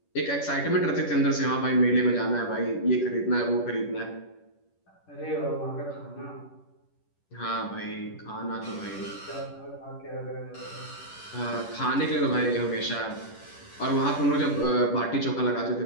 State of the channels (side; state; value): right; late; 10 ms